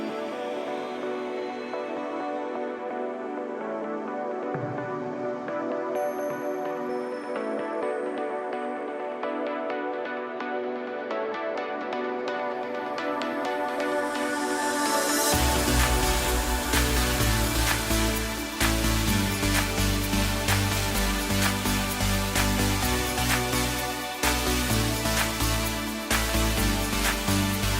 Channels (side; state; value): both; identical; correlation 1.00